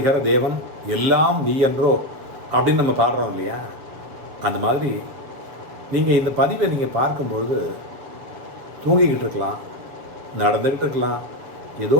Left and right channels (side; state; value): left; late; 7.7 ms